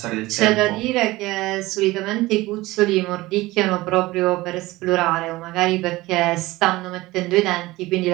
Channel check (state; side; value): quieter; left; 19.3 dB